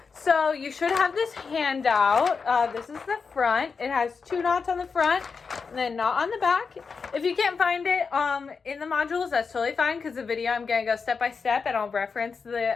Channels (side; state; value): right; quieter; 5.2 dB